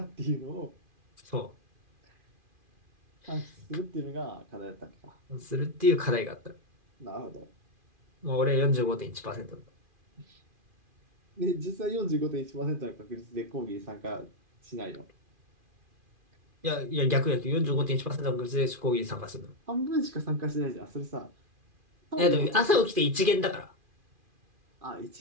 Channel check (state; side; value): late; left; 2.4 ms